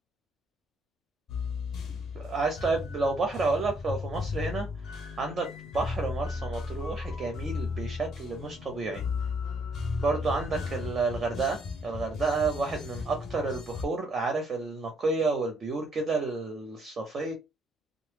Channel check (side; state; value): both; normal; correlation 0.69